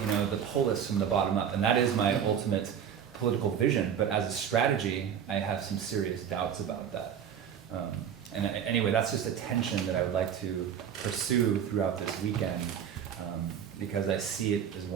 the polis from the bottom up. And that is my ultimate political vision. But as a strategy, I have some serious doubts about that. And anyway, that's just a tension that I would like to pursue throughout this weekend, because I see it as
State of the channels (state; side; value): quieter; left; 8.4 dB